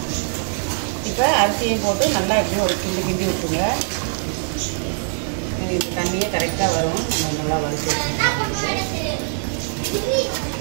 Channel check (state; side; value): silent; left; digital silence